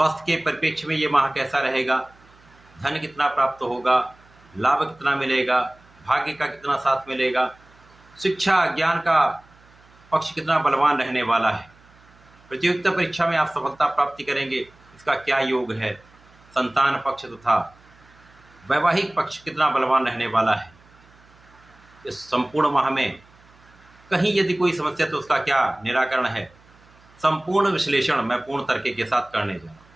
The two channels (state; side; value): noise; right; hum, 28 dB below the sound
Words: के परिप्रेक्ष्य में ये माह कैसा रहेगा, धन कितना प्राप्त होगा, लाभ कितना मिलेगा, भाग्य का कितना साथ मिलेगा, शिक्षा ज्ञान का पक्ष कितना बलवान रहने वाला है, प्रतियोगिता परीक्षा में आप सफलता प्राप्ति करेंगे, इसका क्या योग है, संतान पक्ष तथा वैवाहिक पक्ष कितना बलवान रहने वाला है। इस संपूर्ण माह में कहीं यदि कोई समस्या तो उसका क्या निराकरण है, संपूर्ण विश्लेषण मैं पूर्ण तर्क के साथ करने जा रहा हूँ।